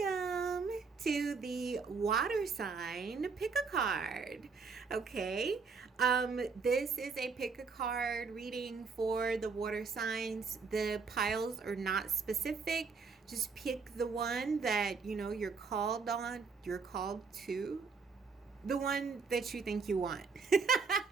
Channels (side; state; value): left; quieter; 5.0 dB